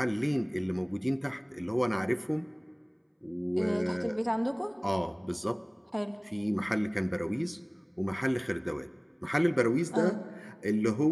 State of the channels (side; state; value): both; identical; correlation 1.00